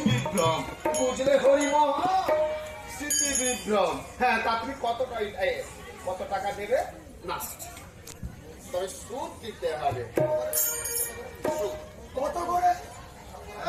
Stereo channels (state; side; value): identical; both; correlation 1.00